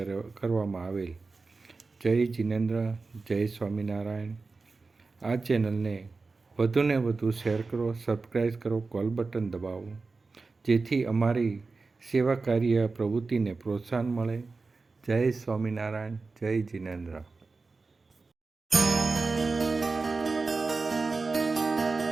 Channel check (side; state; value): left; quieter; 4.0 dB